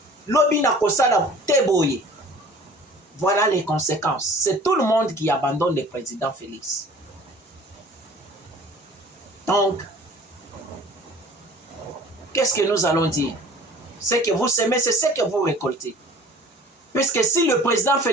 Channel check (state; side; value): normal; both; correlation 0.47